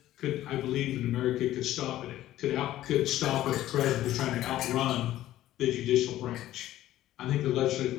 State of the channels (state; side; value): quieter; right; 14.0 dB